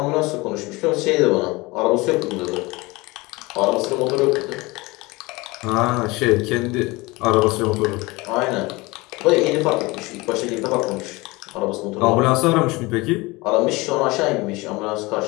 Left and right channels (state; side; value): quieter; right; 23.0 dB